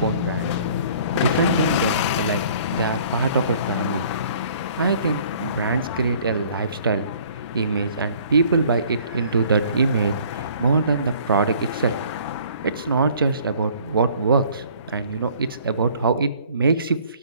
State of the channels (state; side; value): inverted; both; correlation -0.55